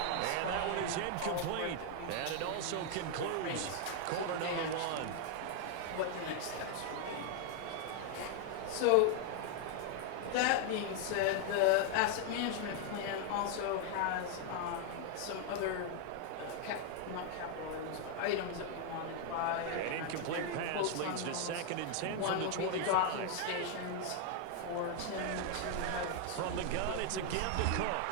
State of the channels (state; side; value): different; both; correlation 0.00